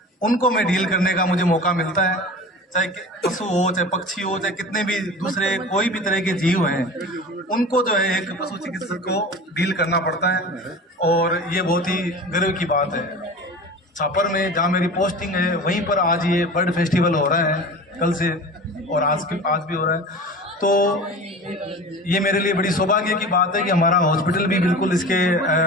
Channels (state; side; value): normal; both; correlation 0.35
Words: उनको मैं डील करने का मुझे मौका मिलता है। चाहे पशु हो, चाहे पक्षी हो, चाहे कितने भी दूसरे कोई भी तरह के जीव हैं, उनको जो है एक पशु चिकित्सक को डील करना पड़ता है। और ये बहुत ही गर्व की बात है। छापर में जहाँ मेरी पोस्टिंग है वहीं पर आज ये बर्ड फेस्टिवल हो रहा है, कल से, और आज भी हो रहा है। तो ये मेरे लिए बड़ी सौभाग्य की बात है कि हमारा हॉस्पिटल भी बिल्कुल इसके